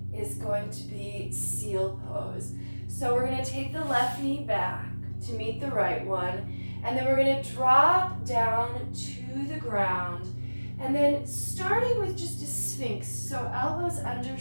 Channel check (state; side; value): inverted; both; correlation -1.00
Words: is going to be seal pose. So we're going to take the left knee back to meet the right one, and then we're going to drop down to the ground, and then starting with just a sphinx, so elbows under